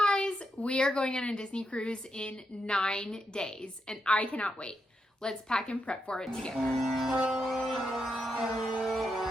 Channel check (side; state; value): both; normal; correlation 0.83